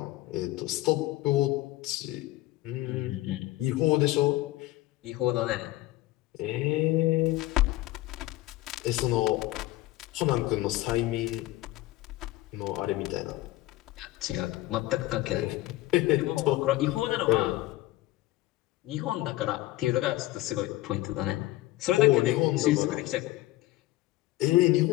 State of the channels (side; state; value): right; quieter; 17.4 dB